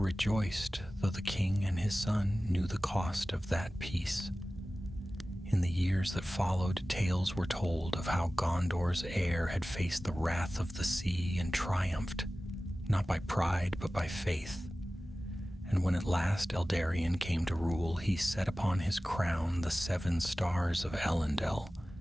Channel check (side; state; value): both; normal; correlation 0.96